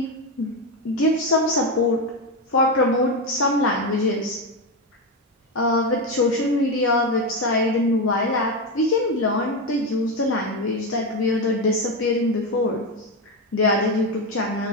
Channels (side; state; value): both; normal; correlation 0.12